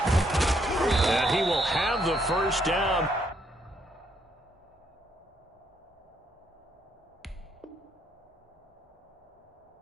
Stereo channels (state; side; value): normal; both; correlation 0.72